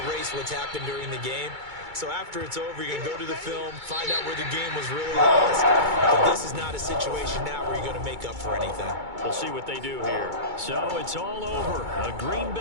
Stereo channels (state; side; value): late; left; 2.2 ms